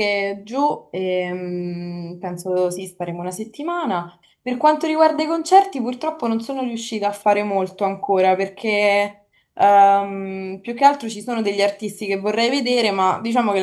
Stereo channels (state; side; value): identical; both; correlation 1.00